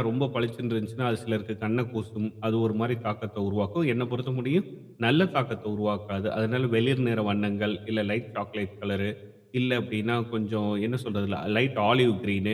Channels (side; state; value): both; identical; correlation 1.00